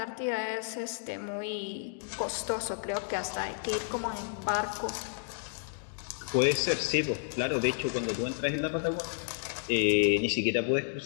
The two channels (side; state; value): right; silent; digital silence